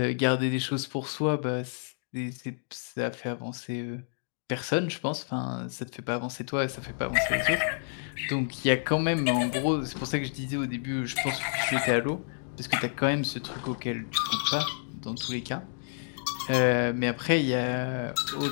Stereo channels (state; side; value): silent; right; digital silence